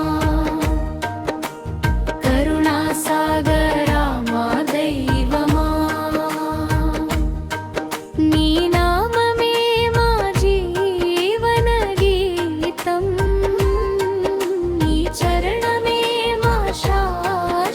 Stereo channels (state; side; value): identical; both; correlation 1.00